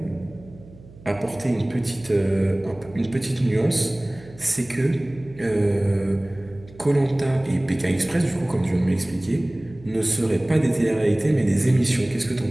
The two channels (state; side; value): noise; right; hum, 21 dB below the sound